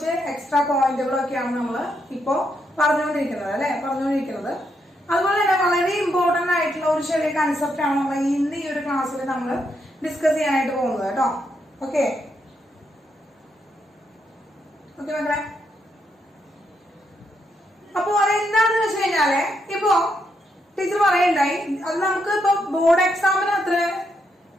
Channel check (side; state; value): both; normal; correlation 0.79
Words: എക്സ്ട്രാ പോയിന്റുകളൊക്കെയാണ് നമ്മൾ ഇപ്പോ പറഞ്ഞുകൊണ്ടിരിക്കുന്നത് അല്ലെ, അതുപോലെ തന്നെ വളരെ ഇമ്പോർട്ടന്റ് ആയിട്ടുള്ള ഒരു ചെറിയ കൺസെപ്റ്റ് ആണ് നമ്മൾ ഇന്ന് ഈ ഒരു ക്ലാസ്സിൽ നമ്മൾ ഡിസ്കസ് ചെയ്യാനായിട്ട് പോകുന്നത് കേട്ടോ. ഓക്കെ മക്കളെ, അപ്പൊ അതെന്താണെന്ന് വെച്ച് കഴിഞ്ഞാല് ഇപ്പോ ടീച്ചർ പറയണ്ടായി, അത് നമുക്ക് ഇപ്പൊ ബോർഡ് എക്സാമിന് അത്ര